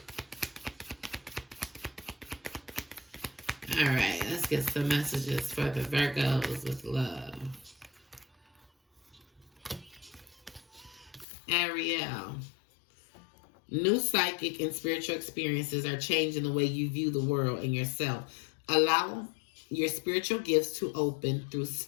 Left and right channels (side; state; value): right; drops out; at 11.2 s